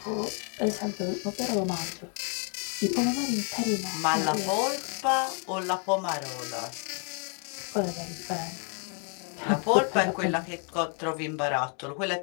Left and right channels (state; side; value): quieter; right; 37.6 dB